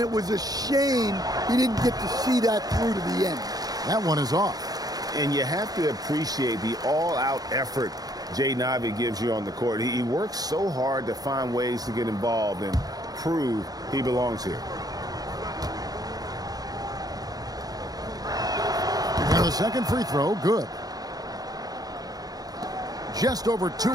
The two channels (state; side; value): late; left; 0.18 ms